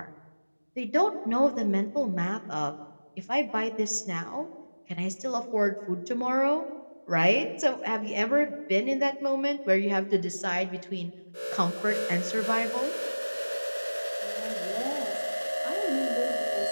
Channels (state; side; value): inverted; both; correlation -1.00